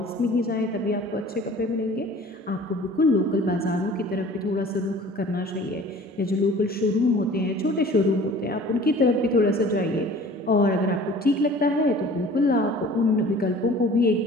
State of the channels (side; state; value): both; normal; correlation 0.47